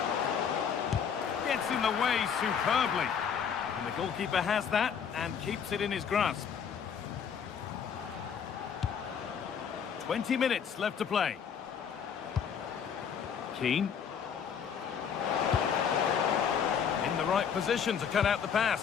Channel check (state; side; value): quieter; right; 7.4 dB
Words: Gets in the way superbly. And the goalkeeper has that and keeps it in his grasp. 20 minutes left to play. Keane. In the right position to cut out the